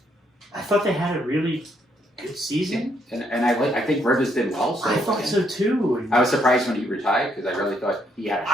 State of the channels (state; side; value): normal; both; correlation 0.73